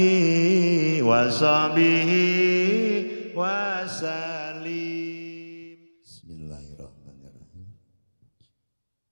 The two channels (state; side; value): inverted; both; correlation -1.00